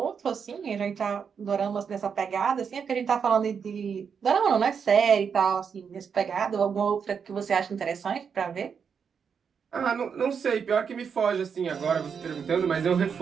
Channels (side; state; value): left; quieter; 6.6 dB